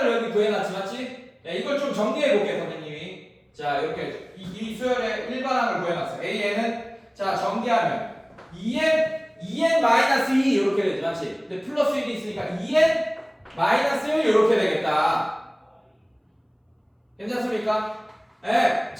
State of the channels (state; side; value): identical; both; correlation 1.00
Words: 여기 구해놨지, 맞지? 야, 이걸 좀 정리해 볼게요, 선생님이. 자, 이렇게 이 수열의 일반항을 구해놨어요. an은 자 정리하면 2n-2 이렇게 되지, 맞지? 근데 플러스 1이 있으니까 2n-1 이렇게 되겠다. 괜찮습니까? 네.